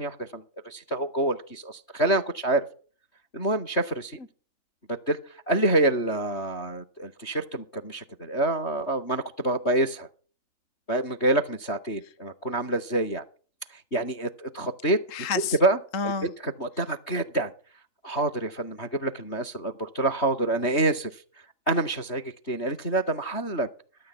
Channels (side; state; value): right; late; 3.2 ms